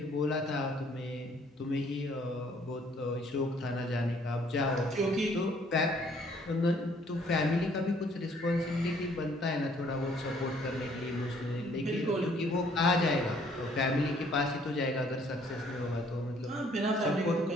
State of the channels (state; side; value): normal; both; correlation 0.62